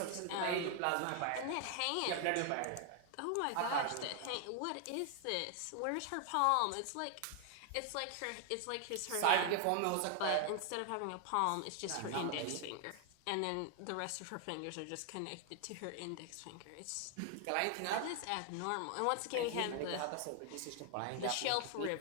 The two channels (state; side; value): different; both; correlation 0.00